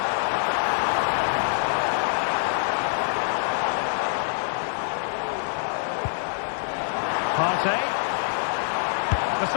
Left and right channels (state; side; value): silent; right; 62 dB below the other